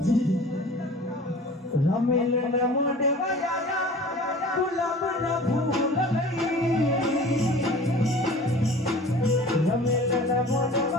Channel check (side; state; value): both; normal; correlation 0.43